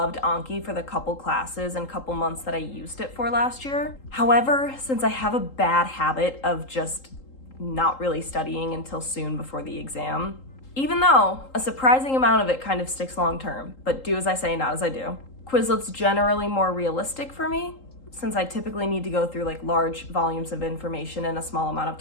Anki for the couple classes and couple months that I used it for last year. However, since I have a bad habit of just not really studying until soon before the exam, even though a surprising amount of it kind of sticks long term, but do as I say, not as I do. Quizlet's generally more realistic for me since I typically need to go through like large volumes of information in a small amount of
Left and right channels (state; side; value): late; right; 3.8 ms